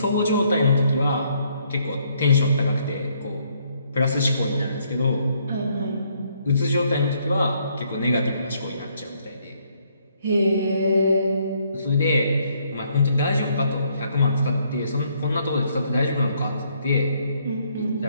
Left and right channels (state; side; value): inverted; both; correlation -0.70